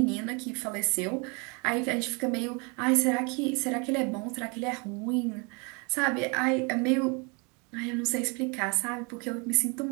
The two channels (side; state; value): left; quieter; 31.9 dB